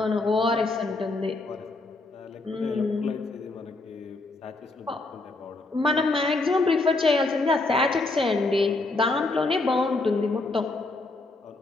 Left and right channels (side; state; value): right; quieter; 3.2 dB